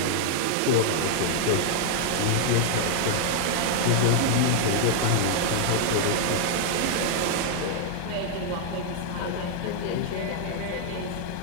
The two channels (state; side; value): different; both; correlation 0.00